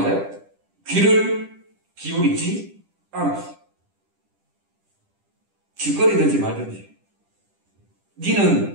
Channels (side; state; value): left; late; 10 ms